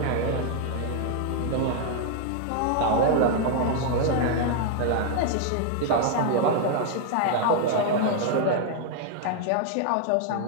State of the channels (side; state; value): both; different; correlation 0.00